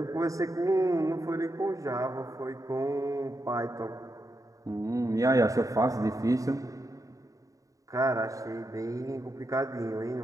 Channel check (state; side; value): late; left; 0.16 ms